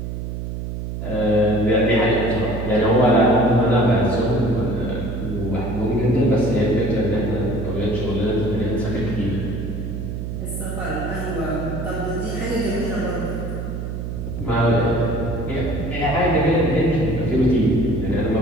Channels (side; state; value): right; noise; hum, 5 dB below the sound